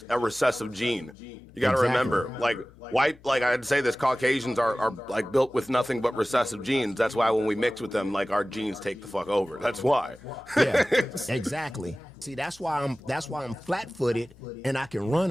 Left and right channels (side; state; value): left; noise; hum, 25 dB below the sound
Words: a recessive gene. You got to remember, like I'd say this, Caucasians are like built with nothing but recessive genes. That's why when we mix with them, like our genes take the fuck over. That's why. Yeah, exactly. See, that's why I'm flat-footed and I can